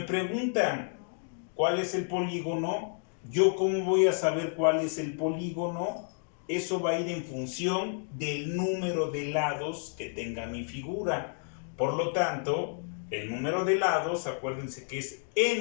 cuál es el polígono, ¿yo cómo voy a saber cuál es el polígono? Eso va a ir en función del número de lados que tenga mi figura. Por lo tanto, el número de lados, acuérdense que es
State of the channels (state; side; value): silent; right; 57 dB below the other